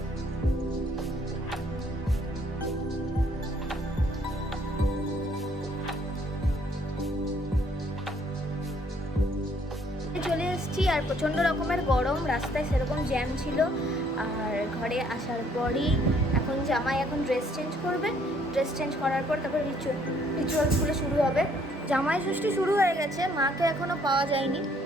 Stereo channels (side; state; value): both; normal; correlation 0.64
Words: চলে এসেছি আর প্রচণ্ড রকমের গরম, রাস্তায় সেরকম জ্যাম ছিল। আর ঘরে আসার পরই এখন জামাই ড্রেস চেঞ্জ করবে। ড্রেস চেঞ্জ করার পর তারপর রিচুয়ালসগুলো শুরু হবে। জামাই ষষ্ঠী শুরু হয়ে গেছে, মাকে এখনও পাওয়া যায়নি,